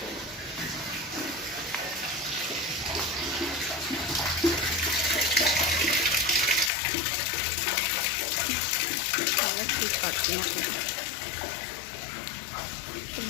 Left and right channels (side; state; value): right; drops out; at 6.7 s